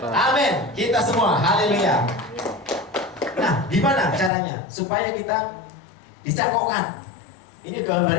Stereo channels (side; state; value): right; drops out; at 4.3 s